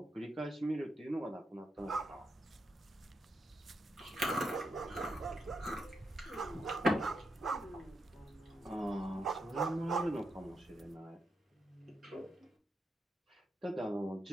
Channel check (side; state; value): both; normal; correlation 0.83